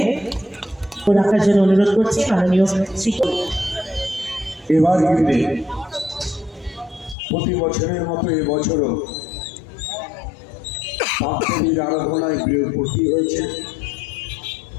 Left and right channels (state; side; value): drops out; right; at 7.2 s